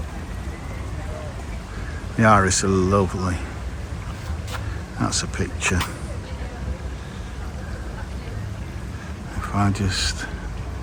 The iris are lovely. That's a picture. If I just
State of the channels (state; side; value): identical; both; correlation 1.00